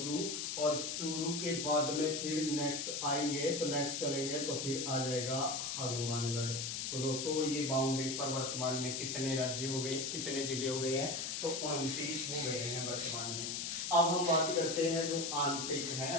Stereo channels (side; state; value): left; noise; hiss, 2 dB below the sound